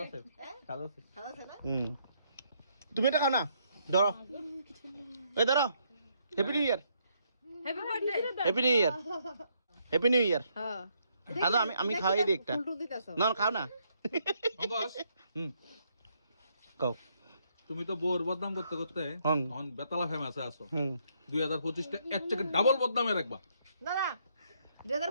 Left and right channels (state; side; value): inverted; both; correlation -0.73